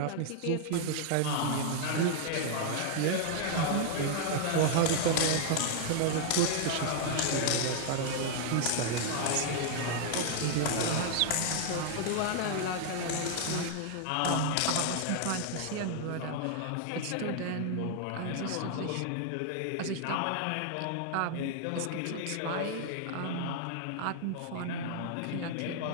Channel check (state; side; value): different; both; correlation 0.00